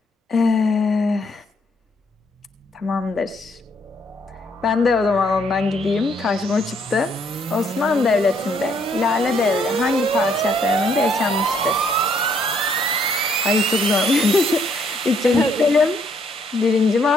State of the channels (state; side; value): normal; both; correlation 0.69